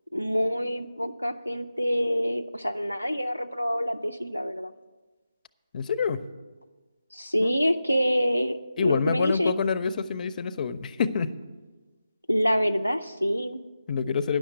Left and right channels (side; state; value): both; inverted; correlation -0.90